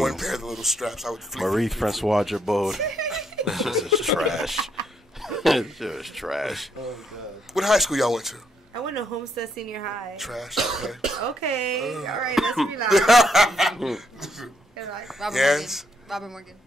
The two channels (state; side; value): normal; both; correlation 0.74